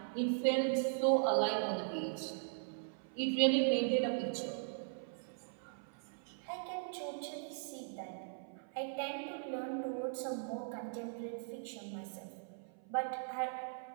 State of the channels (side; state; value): left; silent; 52 dB below the other